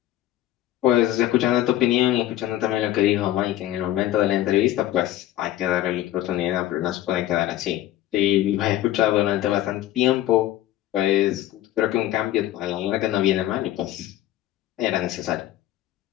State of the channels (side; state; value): right; quieter; 14.1 dB